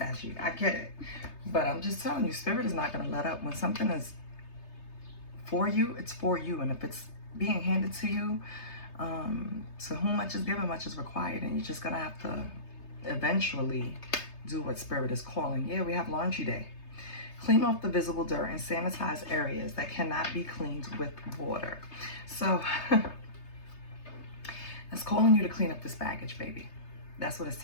I get it. But I'm just telling you, Spirit is not going to let up. When something is for you, it's for you. And if it's being handed to you, to whom much is given, much is required. And you're just going to have to eventually do what Spirit is calling. Yeah, we have laundry day. Clean off the visible dirt and sanitize areas that cannot be cleaned with water. So it's calling you to clean up this baggage, baby. That's what it's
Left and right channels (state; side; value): late; right; 3.3 ms